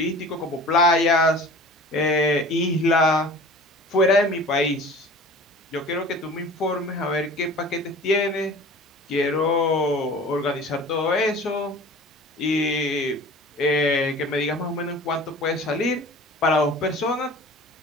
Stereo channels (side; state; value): both; normal; correlation 0.42